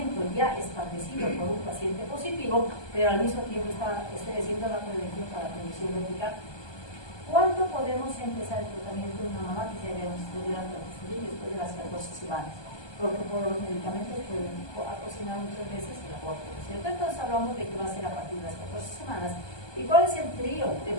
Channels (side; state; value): right; late; 1.2 ms